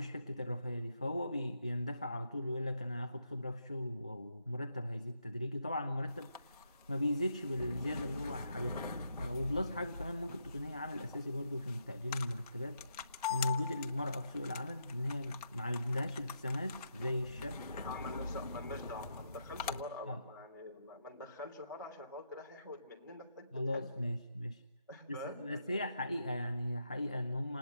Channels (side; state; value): both; inverted; correlation -0.80